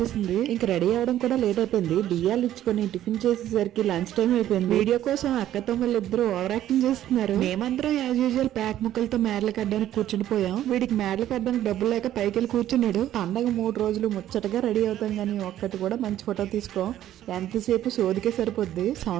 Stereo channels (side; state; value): left; quieter; 12.4 dB